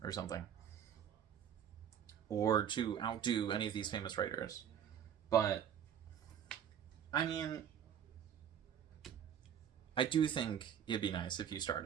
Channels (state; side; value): quieter; left; 9.0 dB